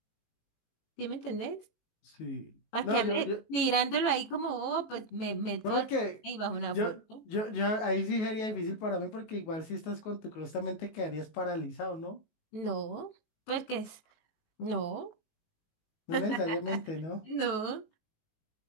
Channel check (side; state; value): right; late; 19 ms